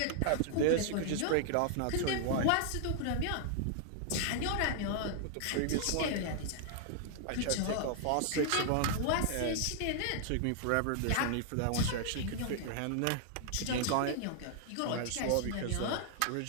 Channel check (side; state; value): both; different; correlation 0.00